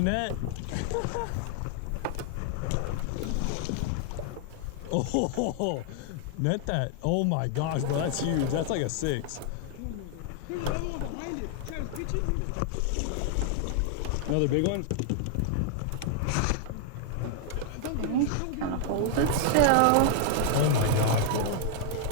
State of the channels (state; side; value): different; both; correlation 0.00